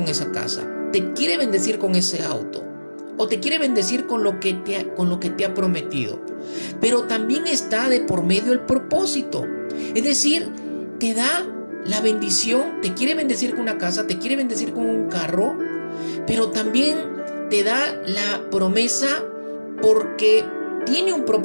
esa casa, te quiere bendecir con ese auto, o te quiere bendecir con lo que te ha prometido. Pero también está de por medio el propósito. Es decir, te da la bendición, te quiere bendecir con una casa, te quiere bendecir con un carro, pero también te da la promesa porque tiene un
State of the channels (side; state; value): both; inverted; correlation -1.00